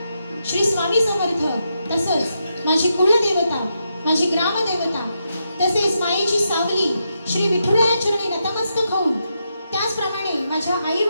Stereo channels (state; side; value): inverted; both; correlation -0.83